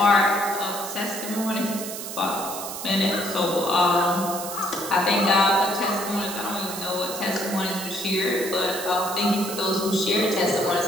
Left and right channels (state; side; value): noise; right; hiss, 8 dB below the sound